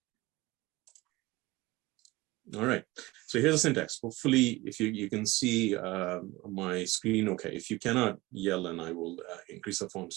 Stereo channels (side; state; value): left; quieter; 20.7 dB